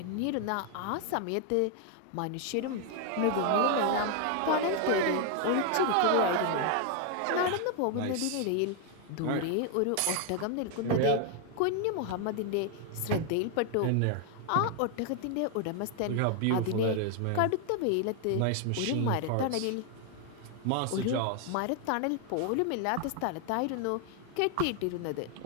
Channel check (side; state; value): both; different; correlation 0.00